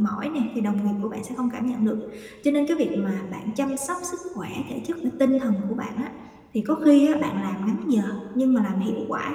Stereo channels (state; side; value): identical; both; correlation 1.00